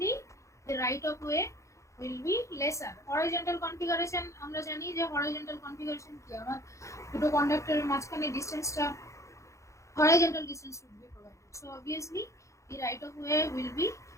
the right of way will be lesser. Horizontal configuration আমরা জানি যে horizontal configuration কি আমার দুটো কন্ডাক্টরের মাঝখানে ডিসটেন্সটা horizontal distance should be provided. So obviously the right of way will be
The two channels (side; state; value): right; late; 0.15 ms